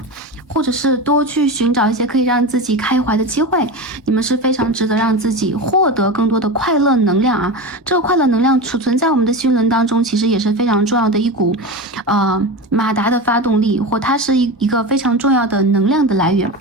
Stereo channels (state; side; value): normal; both; correlation 0.23